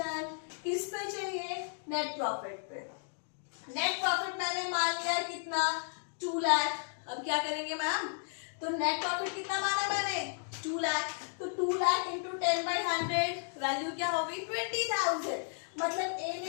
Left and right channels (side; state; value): right; silent; digital silence